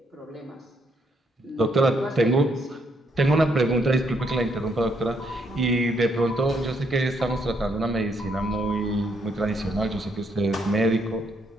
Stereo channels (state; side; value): normal; both; correlation 0.73